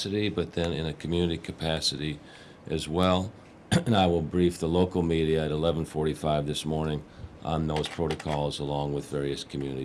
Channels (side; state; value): both; identical; correlation 1.00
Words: but then in a community capacity as well. And I will brief the local media at 11:45 this morning on those protocols along with various